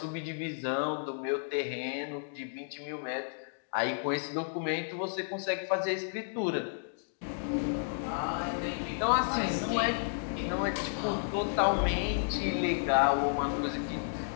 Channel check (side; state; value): right; silent; digital silence